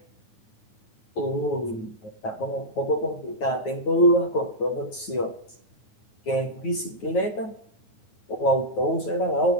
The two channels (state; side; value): late; right; 9.3 ms